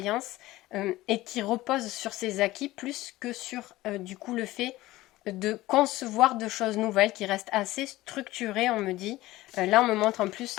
et qui repose sur ses acquis plus que sur du coup le fait de concevoir de choses nouvelles qui restent assez structurées, on me dit. Là, on me montre en plus,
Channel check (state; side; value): quieter; right; 17.6 dB